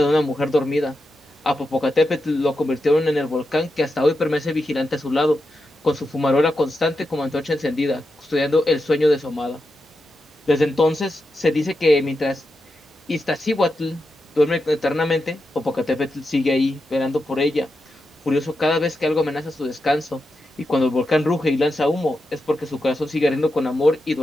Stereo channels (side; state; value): both; normal; correlation 0.88